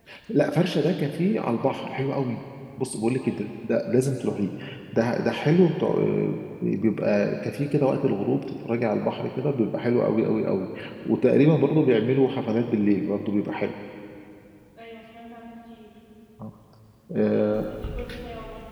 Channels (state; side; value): identical; both; correlation 1.00